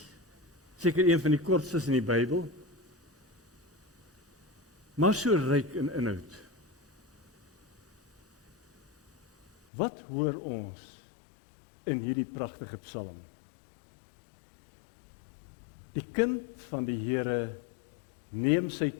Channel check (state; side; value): drops out; right; at 9.5 s